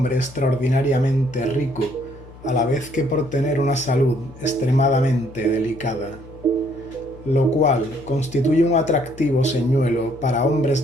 extraordinariamente rico, a la vez que por tener una salud extremadamente delicada, lo cual constituye un atractivo señuelo para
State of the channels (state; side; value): noise; left; hum, 19 dB below the sound